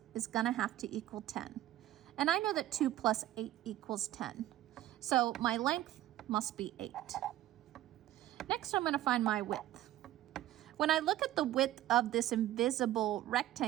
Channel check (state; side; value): quieter; left; 14.1 dB